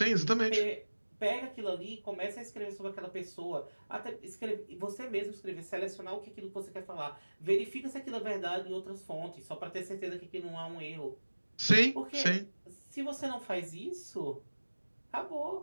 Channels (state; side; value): inverted; both; correlation -1.00